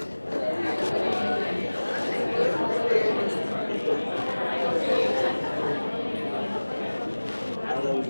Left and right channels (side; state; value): both; inverted; correlation -1.00